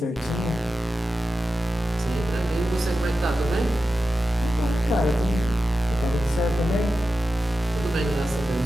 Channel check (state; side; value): normal; both; correlation 0.92